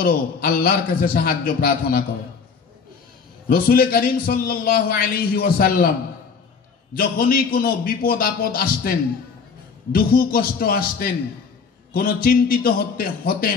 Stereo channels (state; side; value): quieter; right; 5.5 dB